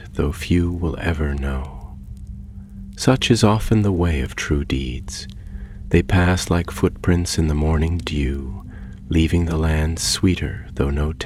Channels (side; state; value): both; identical; correlation 1.00